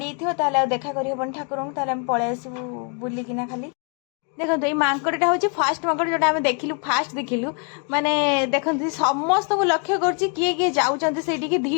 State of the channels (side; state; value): right; quieter; 38.1 dB